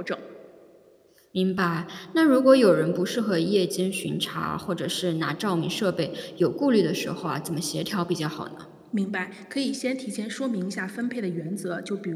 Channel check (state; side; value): identical; both; correlation 1.00